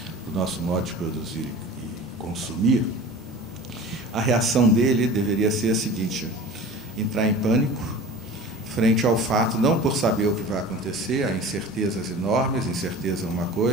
do nosso modo de produzir e consumir, a reação dele deveria ser a seguinte: entrar em pânico frente ao fato, não por saber o que vai acontecer, há incertezas enormes, incerteza é uma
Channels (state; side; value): normal; both; correlation 0.39